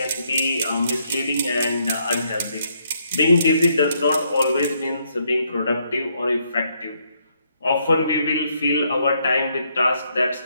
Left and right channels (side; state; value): both; inverted; correlation -0.73